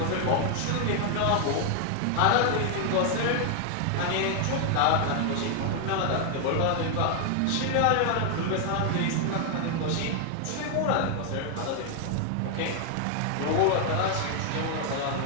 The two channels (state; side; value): different; both; correlation 0.00